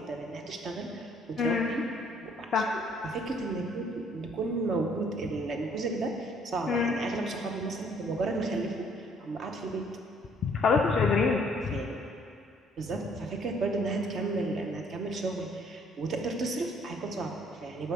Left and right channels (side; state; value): both; normal; correlation 0.62